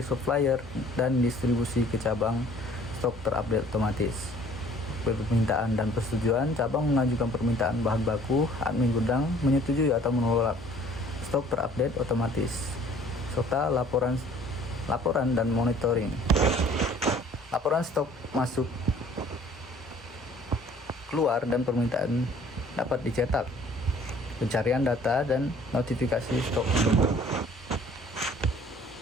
supplier, dan distribusi ke cabang. Stok terupdate otomatis. Permintaan dan persetujuan, cabang mengajukan permintaan bahan baku, admin gudang menyetujui atau menolak. Stok terupdate otomatis. Serta laporan dan monitoring. Laporan stok masuk, keluar, dan permintaan dapat dicetak. Pencarian data dan notifikasi stok.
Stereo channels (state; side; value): normal; both; correlation 0.54